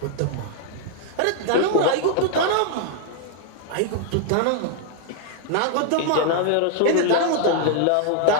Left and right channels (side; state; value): both; different; correlation 0.00